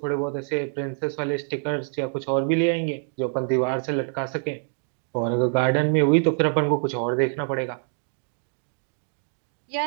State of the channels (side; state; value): left; silent; 61 dB below the other